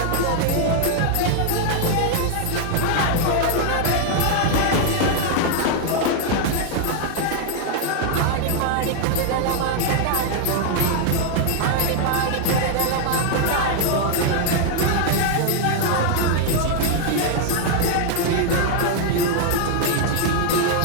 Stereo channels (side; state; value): both; different; correlation 0.00